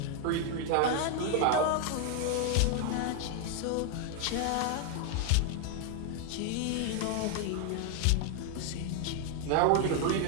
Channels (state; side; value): different; both; correlation 0.00